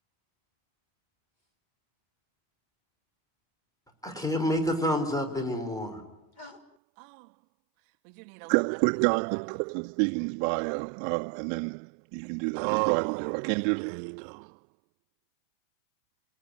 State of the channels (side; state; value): left; drops out; at 6.7 s